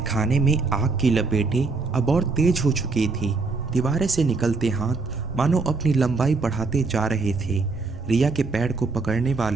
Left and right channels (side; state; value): left; quieter; 4.1 dB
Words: में आग की लपेटें अब और तेज हो चुकी थी। दीवारें से निकलते हाथ मानो अपनी लंबाई बढ़ाते जा रहे थे। रिया के पैर को पकड़ने